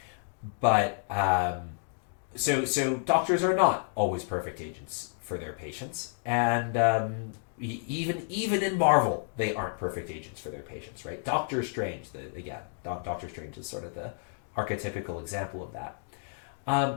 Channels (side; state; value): right; silent; digital silence